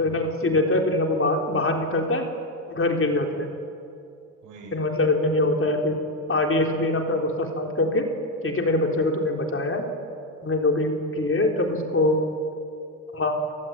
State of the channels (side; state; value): both; normal; correlation 0.07